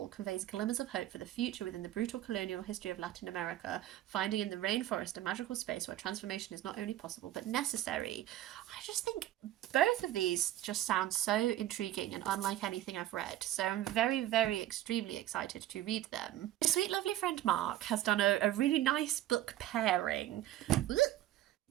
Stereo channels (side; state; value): left; quieter; 13.8 dB